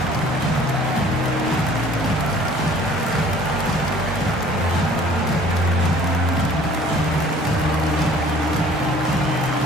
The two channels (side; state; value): both; normal; correlation 0.52